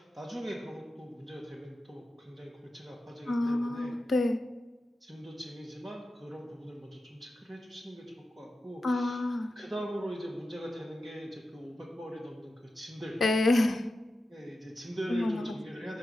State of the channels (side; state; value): both; normal; correlation 0.91